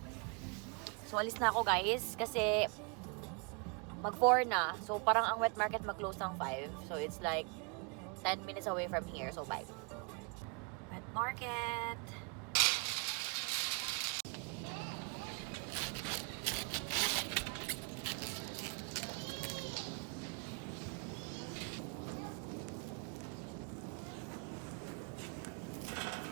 So, alis na ako guys. Kasi, mag 4 na. So, parang ang wet market mag-close ng 5. So, it's like 10 minutes away from here. So, bye. Wet market.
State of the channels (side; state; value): left; quieter; 34.7 dB